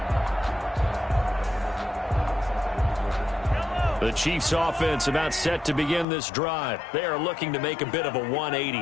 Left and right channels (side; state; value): right; drops out; at 6.1 s